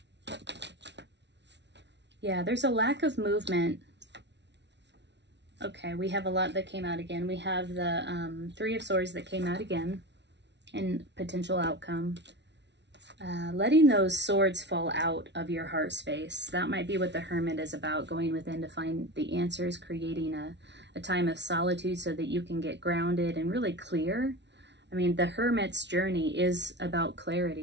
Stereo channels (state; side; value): late; left; 0.51 ms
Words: Yeah, there's a lack of movement. Okay, we have a lot that came out again. We have the Three of Swords that came out again in potential outcome. letting those swords fall out of your heart space. That might be what the Hermit is about, going within to find the answers, creating a time of solitude so that you can get grounded and really clear. I mean, the Hermit's journey is about